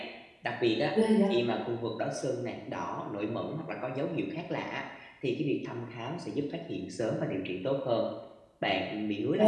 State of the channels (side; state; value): both; identical; correlation 1.00